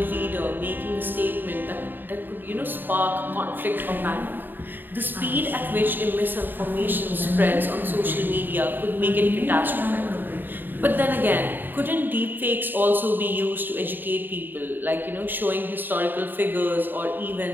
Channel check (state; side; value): late; left; 0.092 ms